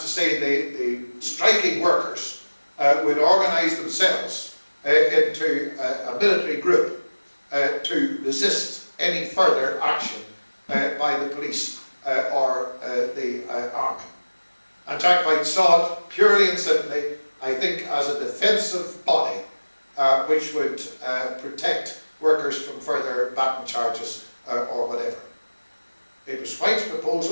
to say, the striking workers would organise themselves into a military group to resist any further action by the police or the army. And Jack White saw it purely and simply, I think, as a defensive body which would protect workers from further baton charges or whatever. It was White's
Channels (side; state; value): both; inverted; correlation -1.00